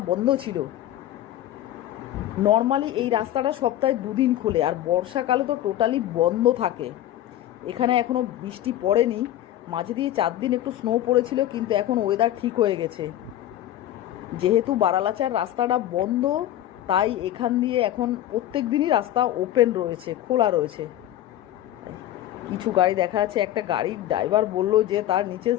বন্ধ ছিল। নর্মালি এই রাস্তাটা সপ্তাহে 2 দিন খোলে, আর বর্ষাকালে তো টোটালি বন্ধ থাকে। এখানে এখনও বৃষ্টি পড়েনি, মাঝে দিয়ে 4 দিন একটু স্নো পড়েছিল, কিন্তু এখন ওয়েদার ঠিক হয়ে গেছে। যেহেতু বারালাচার রাস্তাটা বন্ধ, তাই এখান দিয়ে এখন প্রত্যেক দিনই রাস্তা ওপেন রয়েছে, খোলা রয়েছে। কিছু গাড়ি দেখা যাচ্ছে, একটা গাড়ির ড্রাইভার বলল যে তার নিচে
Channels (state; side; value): quieter; right; 12.9 dB